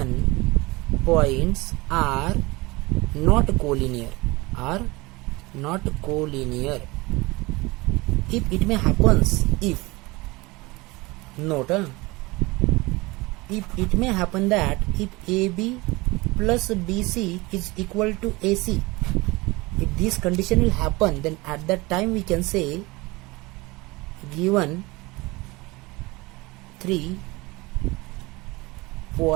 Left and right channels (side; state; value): left; quieter; 22.9 dB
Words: are not collinear. If it may happens, if it may happen that if AB plus BC is equal to AC, if this condition will happen, then at that time we can say given 3